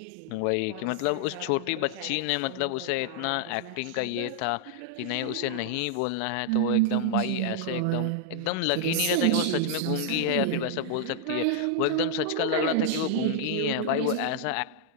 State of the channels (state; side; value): different; both; correlation -0.01